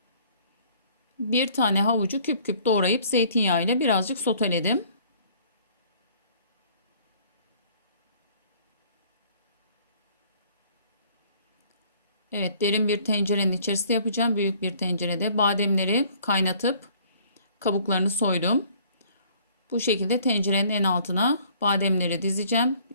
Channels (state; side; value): inverted; both; correlation -0.57